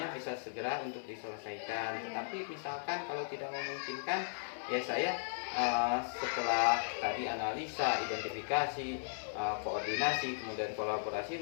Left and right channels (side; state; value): right; silent; 53 dB below the other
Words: bisa segera untuk diselesaikan. Tetapi misalkan kalau tidak memungkinkan, ya saya setelah tadi analisa, identifikasi, koordinasi, kemudian